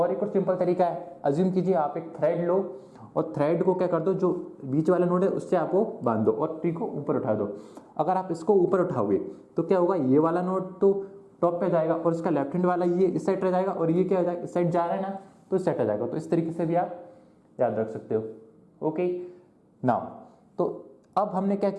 एक और सिंपल तरीका है, अज्यूम कीजिए आप एक थ्रेड लो और थ्रेड को क्या कर दो, जो बीच वाला नोड है उससे आपको बांध दो और ट्री को ऊपर उठा दो। अगर आप इसको ऊपर उठाओगे तो क्या होगा, ये वाला नोड तो टॉप पे जाएगा और इसका लेफ्ट हैंड वाला ये इस साइड रह जाएगा, और ये क्या हो जाएगा, इस साइड जा रहा है ना, तो इस साइड आ जाएगा। तो इस तरीके से भी आप याद रख सकते हो। ओके नाउ, तो अब हमने क्या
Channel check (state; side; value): identical; both; correlation 1.00